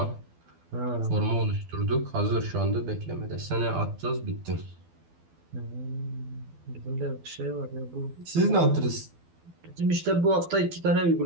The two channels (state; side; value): late; left; 12 ms